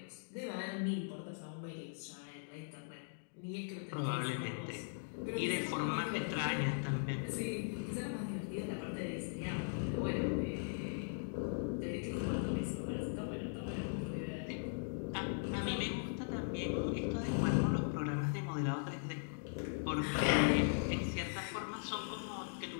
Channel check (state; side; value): silent; right; digital silence